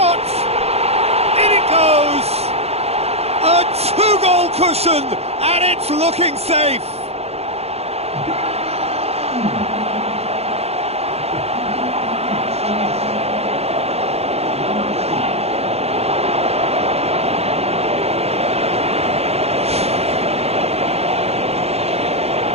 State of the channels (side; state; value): left; late; 0.30 ms